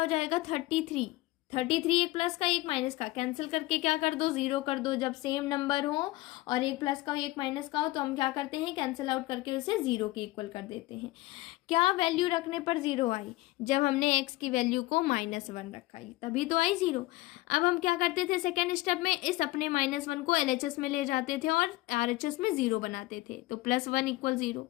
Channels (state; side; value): quieter; right; 19.8 dB